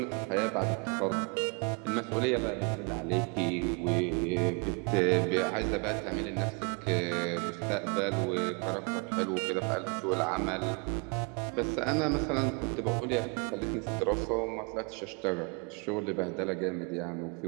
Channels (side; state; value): left; quieter; 34.0 dB